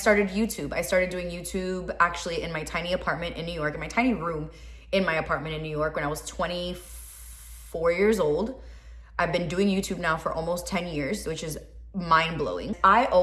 YouTube. I started doing YouTube actually in my tiny apartment in New York, in my tiny room in my apartment in New York when I was 24 years old. I've been doing YouTube now for almost 10 years, which is mind-blowing. I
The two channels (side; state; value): both; identical; correlation 1.00